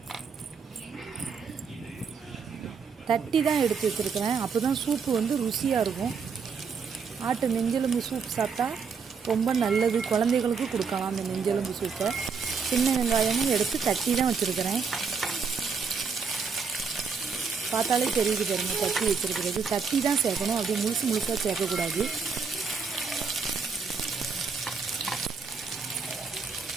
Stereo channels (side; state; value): left; quieter; 5.6 dB